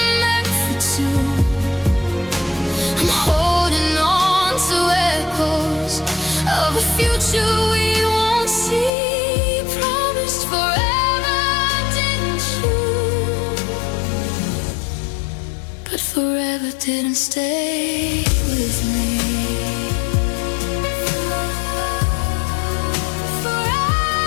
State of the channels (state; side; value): drops out; right; at 8.9 s